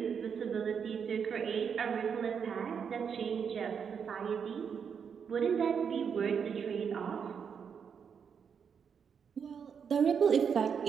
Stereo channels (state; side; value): quieter; left; 6.9 dB